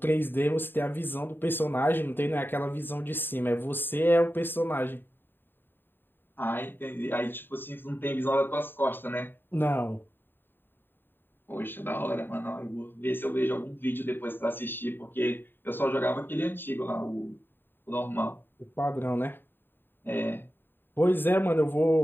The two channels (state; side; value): late; right; 0.097 ms